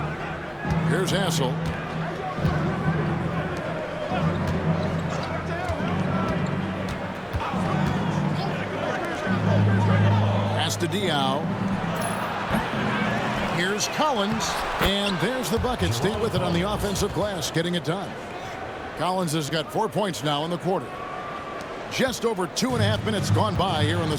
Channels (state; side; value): identical; both; correlation 1.00